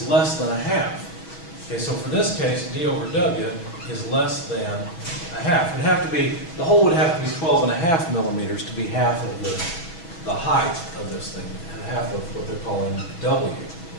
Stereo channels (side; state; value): right; late; 6.1 ms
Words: less than a half. Okay, so for this case, D over W is less than a half. It would have to be, the hole would have to be 12.5 millimeters to be half of the height of this thing, and half of what they're calling W.